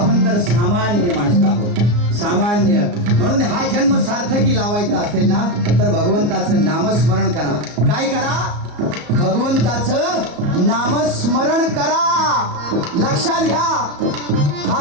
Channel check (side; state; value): left; late; 34 ms